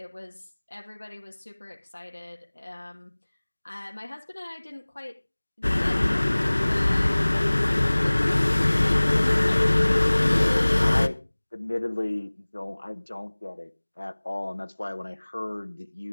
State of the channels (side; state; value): both; inverted; correlation -1.00